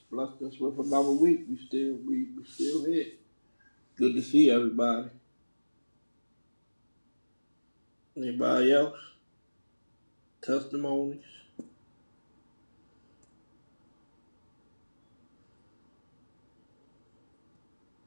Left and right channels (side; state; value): both; inverted; correlation -1.00